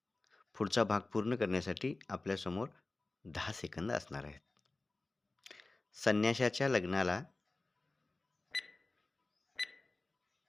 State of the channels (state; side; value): quieter; right; 3.1 dB